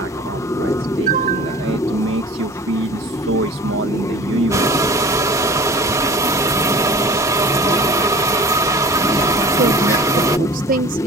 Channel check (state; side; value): normal; both; correlation 0.42